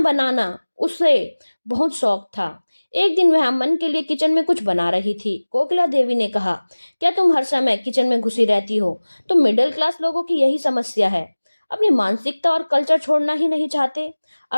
उसे बहुत शौक था। एक दिन वह अमन के लिए किचन में कुछ बना रही थी। कोकिला देवी ने कहा, क्या तुम हर समय किचन में घुसी रहती हो? तुम मिडिल क्लास लोगों की यही समस्या है, अपनी मानसिकता और कल्चर छोड़ना ही नहीं चाहते।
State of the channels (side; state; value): both; inverted; correlation -1.00